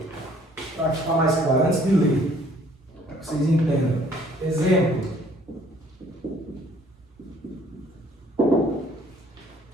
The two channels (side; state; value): both; normal; correlation 0.59